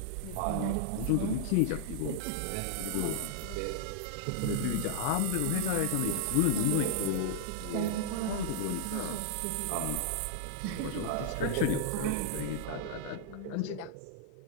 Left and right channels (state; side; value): different; both; correlation -0.01